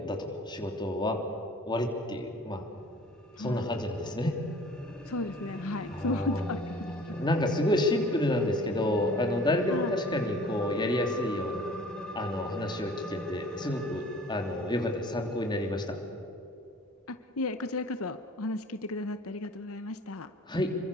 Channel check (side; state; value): both; normal; correlation 0.49